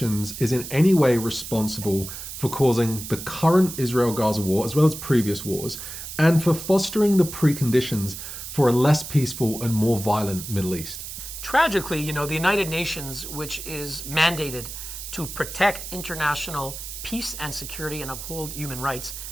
is in any way responsible for causing the current Israel-Gaza war, as well as previous wars, and for fostering the preconditions for a less peaceful and more violent Middle East? Tragically, the United Nations, which is mandated to protect international peace and security and uphold human rights,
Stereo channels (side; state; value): right; noise; hiss, 9 dB below the sound